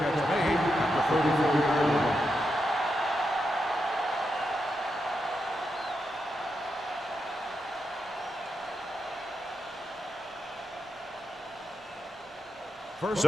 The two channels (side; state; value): both; normal; correlation 0.86